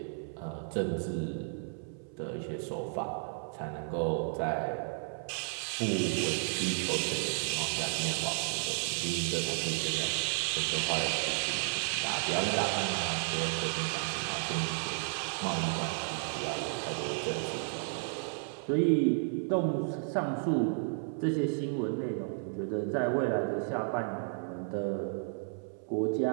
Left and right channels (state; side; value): silent; left; 56 dB below the other